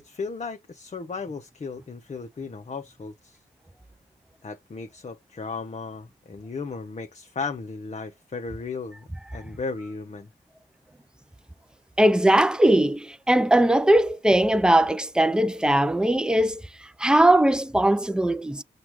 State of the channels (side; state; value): both; normal; correlation 0.91